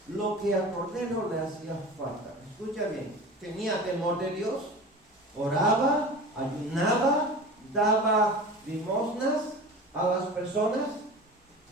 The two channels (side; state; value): both; normal; correlation 0.35